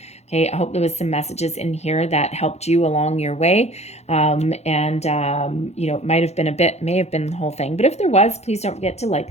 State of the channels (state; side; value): late; right; 0.31 ms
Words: Okay, I hope there was some messages in here that helped you along your way. It may have been the whole thing. But if there was, please don't forget to